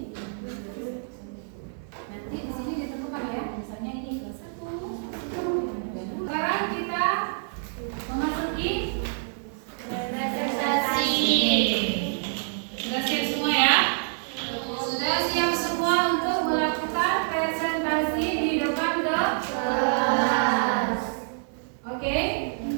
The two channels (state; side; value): silent; left; 60 dB below the other